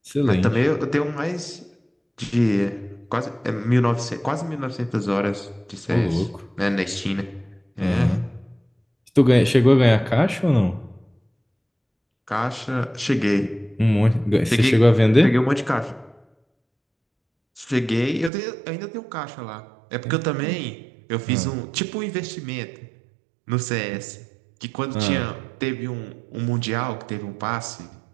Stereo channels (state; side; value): drops out; left; at 18.3 s